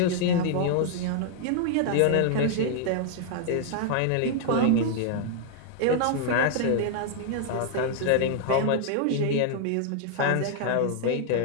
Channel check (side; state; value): both; different; correlation -0.01